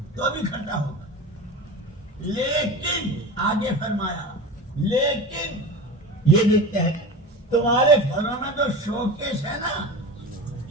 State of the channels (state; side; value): normal; both; correlation 0.31